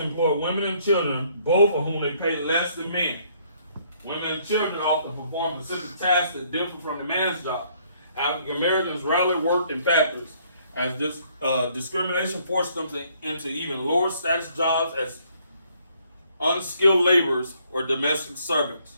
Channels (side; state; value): both; inverted; correlation -0.65